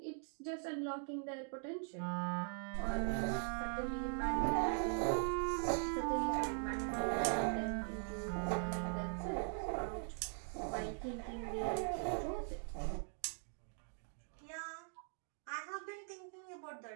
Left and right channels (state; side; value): silent; left; 50 dB below the other